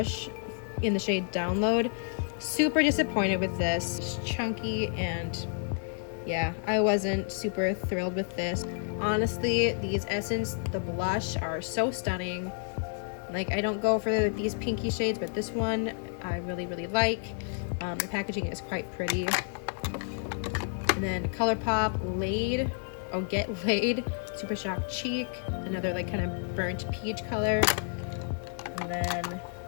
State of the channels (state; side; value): silent; right; 56 dB below the other